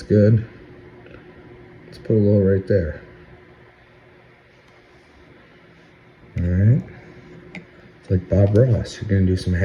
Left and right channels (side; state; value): both; identical; correlation 1.00